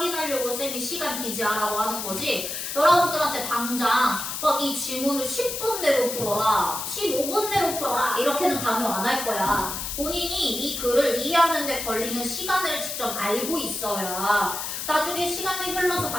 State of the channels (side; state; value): left; noise; hiss, 5 dB below the sound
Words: 쌤이 시간 기지하라고 하는 거지. 여러분들한테 당장 막 이 지문을 10분 내로 풀어라, 15분 내로 풀어라 이렇게는 강요 안 할 거야. 본인이 이 글을 이해하는 데 걸리는 시간을 직접 알고 있어야 나중에 시간이 흘러서